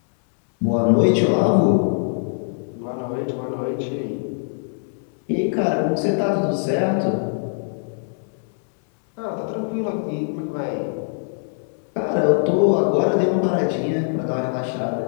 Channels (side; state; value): right; silent; digital silence